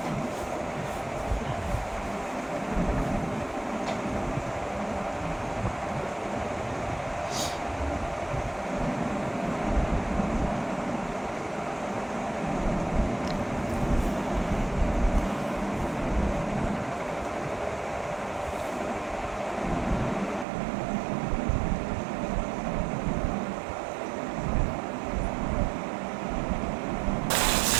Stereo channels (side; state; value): left; drops out; at 20.5 s